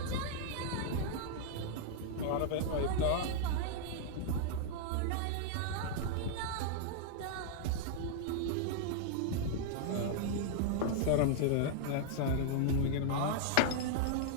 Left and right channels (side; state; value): both; different; correlation -0.01